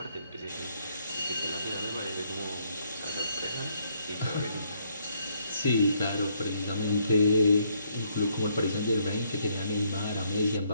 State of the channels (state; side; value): inverted; both; correlation -0.71